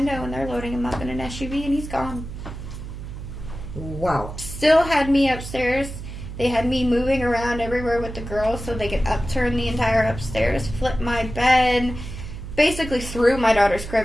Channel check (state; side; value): noise; right; hum, 10 dB below the sound